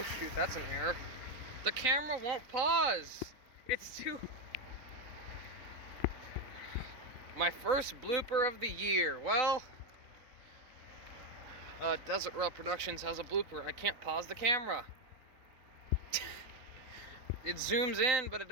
shoot, that's an error. The camera won't pause. It's too... My first blooper of the year. Well, Desert Raw Productions has a blooper. I can't pause the camera. It zooms in, but it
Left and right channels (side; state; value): left; late; 3.9 ms